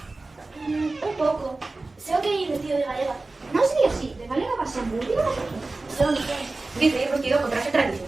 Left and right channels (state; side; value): quieter; left; 3.3 dB